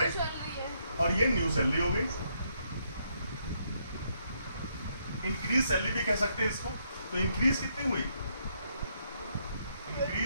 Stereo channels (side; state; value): both; inverted; correlation -0.75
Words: और ये न्यू सैलरी हो गई. इंक्रीज सैलरी भी कह सकते हैं इसको. तो इंक्रीज कितनी हुई,